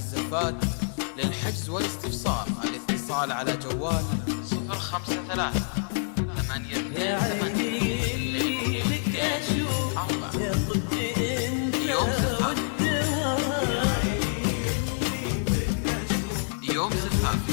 للحجز والاستفسار الاتصال على جوال 053 يا عيني لك أشوف 4. يا طبي أنت يوم زفاف، والدواء. يوم زفاف،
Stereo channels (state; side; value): silent; right; digital silence